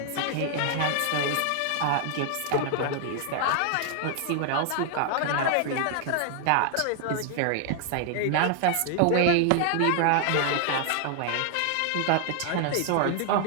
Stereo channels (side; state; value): both; different; correlation 0.00